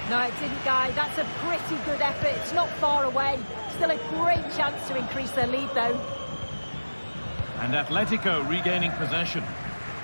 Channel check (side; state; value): both; inverted; correlation -1.00